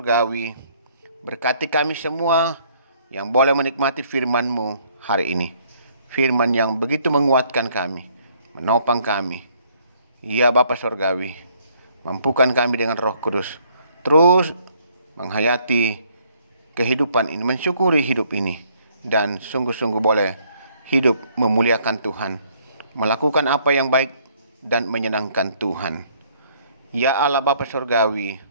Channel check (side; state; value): both; inverted; correlation -0.65